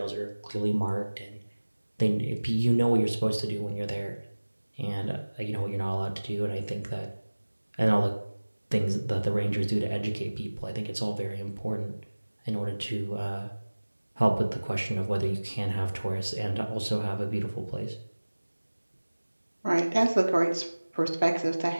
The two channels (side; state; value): both; inverted; correlation -1.00